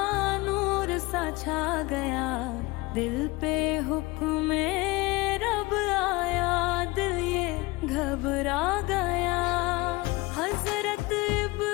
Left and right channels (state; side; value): quieter; right; 22.9 dB